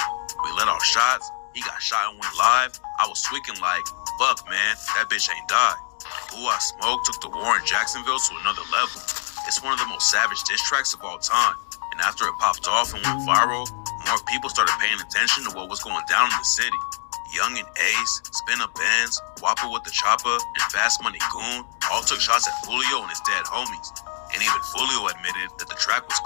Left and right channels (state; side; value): silent; right; digital silence